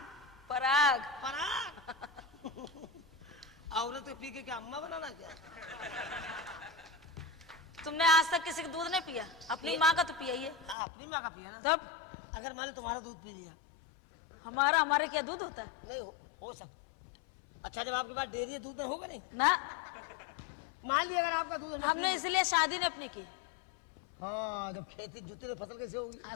पराग। पराग। औरत को पी के क्या अम्मा बनाना क्या? तुमने आज तक किसी का दूध नहीं पिया? अपनी माँ का तो पिया ही है। हाँ, अपनी माँ का पिया ना। तब अगर मान लो तुम्हारा दूध पी लिया। हमारे क्या दूध होता है? नहीं हो सकता। अच्छा, जब आपके पास डेयरी है, दूध नहीं होगा? नहीं ना। मान लिया अगर आपका दूध हमने इसलिए शादी नहीं अपनी की। हाँ, जब खेती जुती तो फसल कैसे होगी? हाँ,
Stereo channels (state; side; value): drops out; right; at 10.8 s